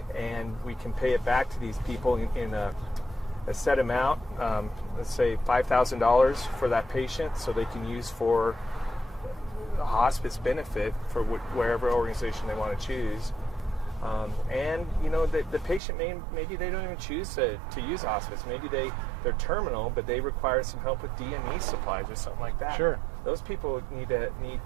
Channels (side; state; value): left; drops out; at 15.8 s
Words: And we can pay it back to these people in a set amount, let's say $5,000 for that patient, so they can use for hospice benefit for wherever organization they want to choose. And the patient maybe they don't even choose to use hospice. Maybe they're terminal, but they require some help with DME supplies or something like that. Sure. Those people need